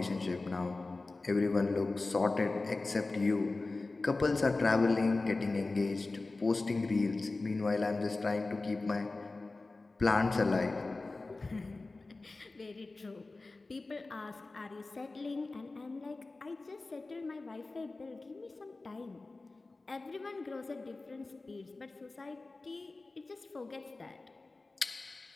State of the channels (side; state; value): right; quieter; 3.4 dB